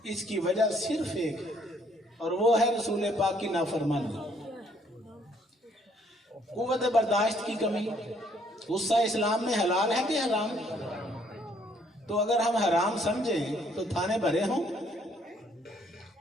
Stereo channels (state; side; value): normal; both; correlation 0.65